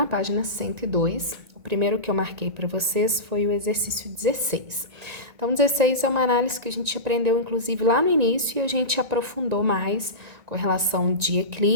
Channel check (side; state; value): left; late; 1.9 ms